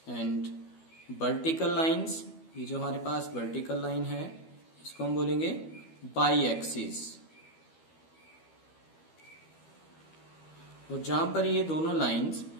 and vertical lines, ये जो हमारे पास वर्टिकल लाइन है इसको हम बोलेंगे बाई एक्सिस। और जहां पर ये दोनों लाइंस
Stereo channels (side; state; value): right; late; 12 ms